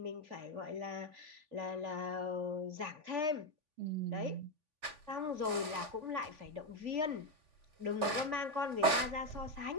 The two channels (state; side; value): late; left; 3.5 ms